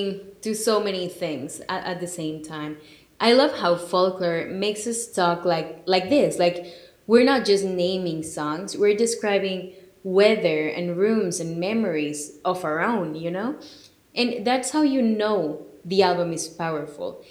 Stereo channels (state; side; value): identical; both; correlation 1.00